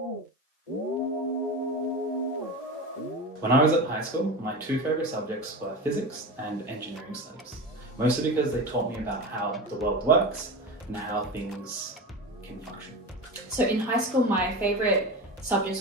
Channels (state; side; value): normal; both; correlation 0.26